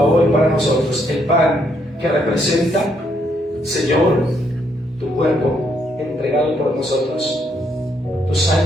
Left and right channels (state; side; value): normal; both; correlation 0.73